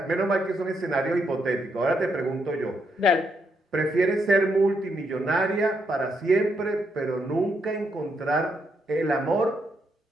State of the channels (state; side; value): normal; both; correlation 0.78